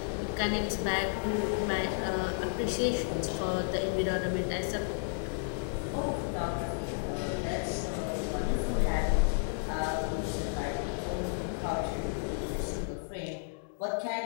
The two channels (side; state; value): right; silent; digital silence